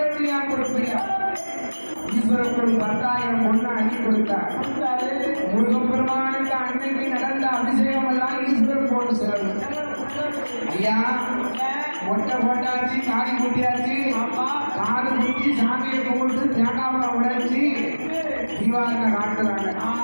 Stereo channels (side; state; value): both; inverted; correlation -1.00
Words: ஏன் கொடுப்பீங்க ஈஸ்வரனுக்கு 10,000 பொண்ணு அள்ளி கொடுத்தார் முருகப்பெருமானுக்கு அன்னைக்கு நடந்த அபிஷேகம் எல்லாம் ஈஸ்வரன் போட்டு செலவு ஐயா மொட்டை போட்டாச்சு காதி குட்டியாச்சு காது குட்டி சாமியை கும்பிட்டு தேங்காவளை உடைச்சி தீபாவளி காட்டுறாங்க